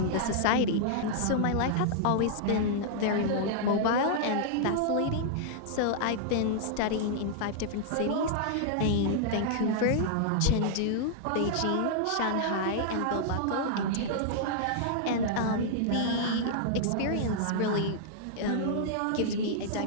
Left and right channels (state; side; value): different; both; correlation -0.01